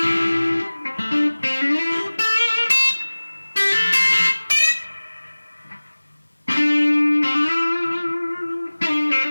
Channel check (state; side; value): inverted; both; correlation -1.00